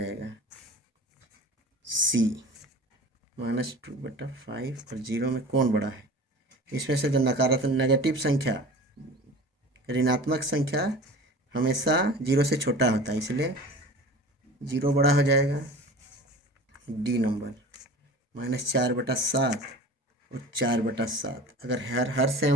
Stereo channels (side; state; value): both; normal; correlation 0.38